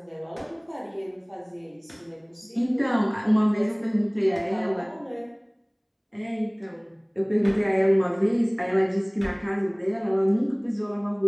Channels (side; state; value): both; identical; correlation 1.00